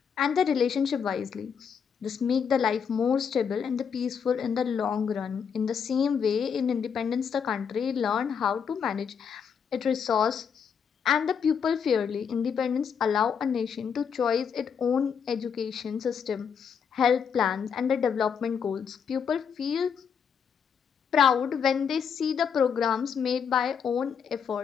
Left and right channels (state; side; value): quieter; right; 7.0 dB